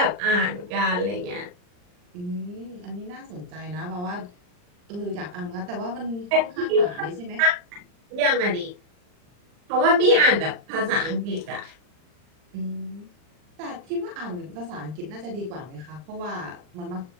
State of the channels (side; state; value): left; late; 39 ms